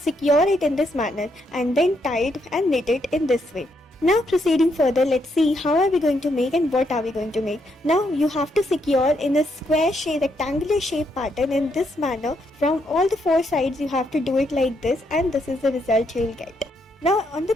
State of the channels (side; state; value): both; normal; correlation 0.76